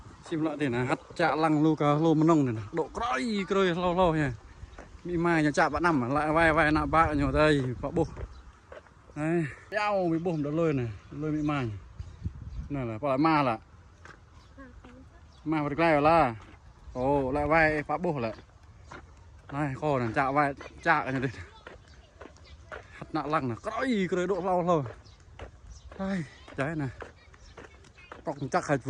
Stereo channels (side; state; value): both; identical; correlation 1.00